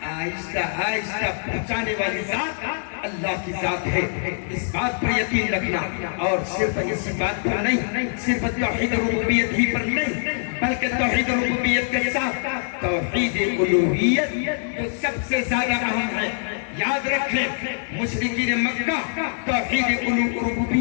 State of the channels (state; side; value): silent; right; digital silence